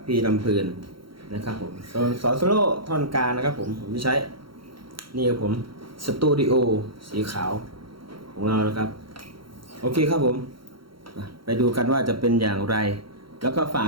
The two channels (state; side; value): late; left; 0.74 ms